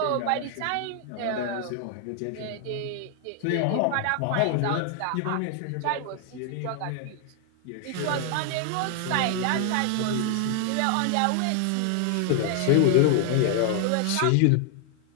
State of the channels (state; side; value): different; both; correlation 0.00